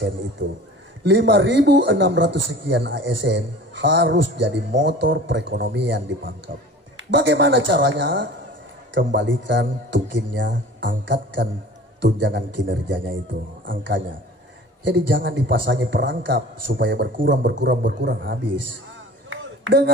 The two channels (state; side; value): normal; both; correlation 0.42